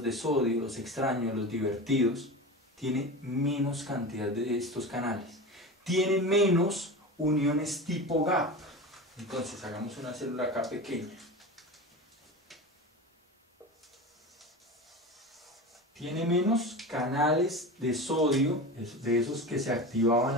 de sodio, los extraños, los divertidos? Tiene menos cantidad de estos canales, tiene menos uniones tipo gap. Entonces hagamos una célula acá pequeña, tiene menos canales de sodio, de esos que se activaban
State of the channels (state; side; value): normal; both; correlation 0.28